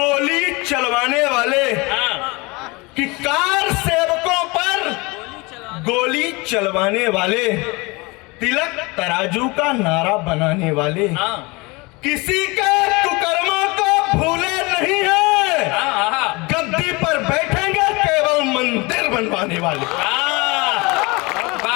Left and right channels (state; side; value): quieter; right; 25.6 dB